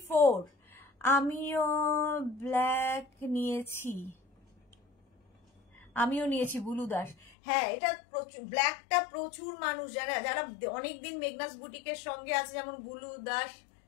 আমিও ব্ল্যাক নিয়েছি, বুলু দাস। হ্যাঁ, এটা ব্ল্যাকটা প্রচুর মানুষ, যারা অনেকদিন মেঘনাস বুটিকের সঙ্গে আছে, যেমন বুলু দাস,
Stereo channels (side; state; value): right; drops out; at 7.3 s